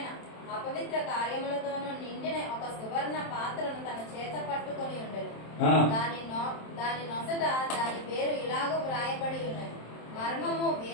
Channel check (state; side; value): late; right; 27 ms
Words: అపవిత్ర కార్యములతోను నిండిన ఒక సువర్ణ పాత్రను తన చేత పట్టుకొని ఉండెను. దాని నొసట దాని పేరు ఇలాగూ వ్రాయబడి ఉన్నది, మర్మము